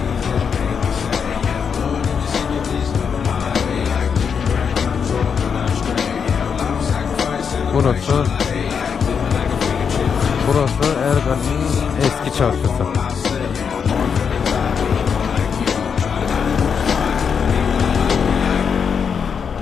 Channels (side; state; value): right; quieter; 6.6 dB